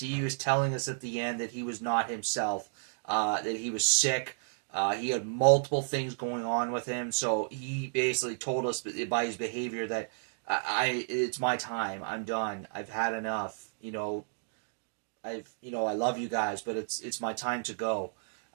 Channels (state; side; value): silent; left; digital silence